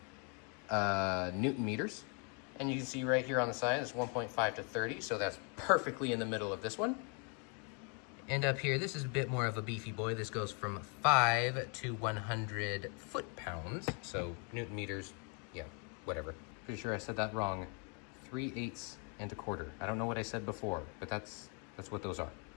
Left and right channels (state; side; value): quieter; right; 36.9 dB